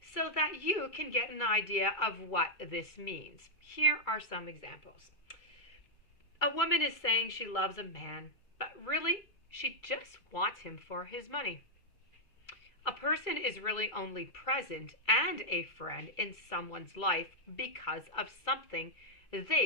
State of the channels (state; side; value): late; right; 2.3 ms